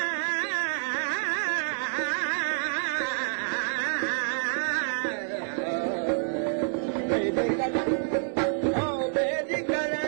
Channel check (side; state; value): left; silent; 59 dB below the other